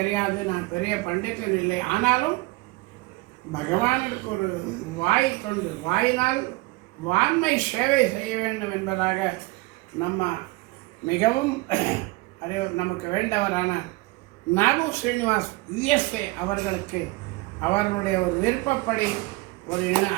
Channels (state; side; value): quieter; left; 22.5 dB